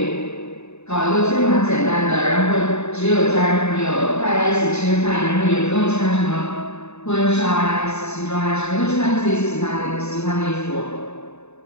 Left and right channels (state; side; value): late; right; 0.81 ms